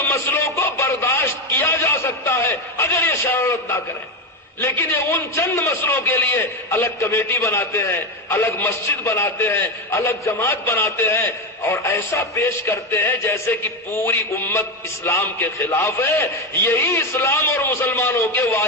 مسئلوں کو برداشت کیا جا سکتا ہے اگر یہ شرارت نہ کریں، لیکن یہ ان چند مسئلوں کے لیے الگ کمیٹی بناتے ہیں، الگ مسجد بناتے ہیں، الگ جماعت بناتے ہیں، اور ایسا پیش کرتے ہیں جیسے کہ پوری امت اسلام کے خلاف ہے. یہی اسلام اور مسلمانوں کے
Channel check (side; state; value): both; normal; correlation 0.12